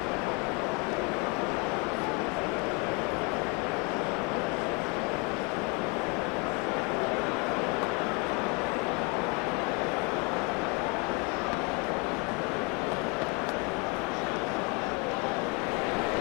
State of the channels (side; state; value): right; quieter; 31.1 dB